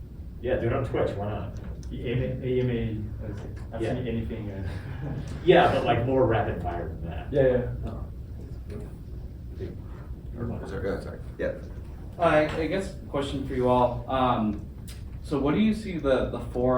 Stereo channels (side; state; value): both; identical; correlation 1.00